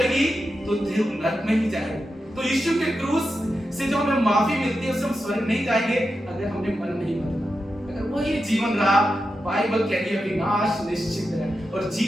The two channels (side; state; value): both; normal; correlation 0.89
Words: तो देव नरक में ही जाएगी। तो यीशु के क्रूस से जो हमें माफी मिलती है, उससे हम स्वर्ग नहीं जाएंगे अगर हमने मन नहीं बदला। अगर वो ये जीवन रहा, बाइबल कहती है विनाश निश्चित है। और